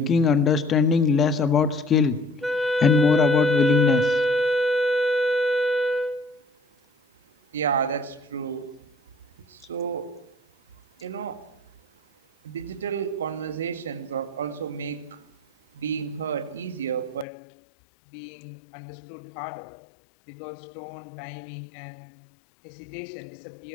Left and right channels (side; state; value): right; drops out; at 17.2 s